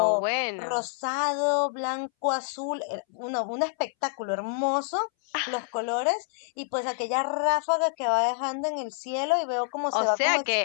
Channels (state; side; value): silent; right; 60 dB below the other